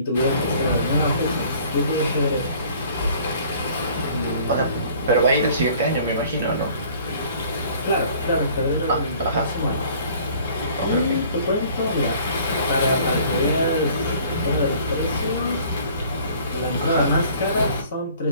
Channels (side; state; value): both; inverted; correlation -0.53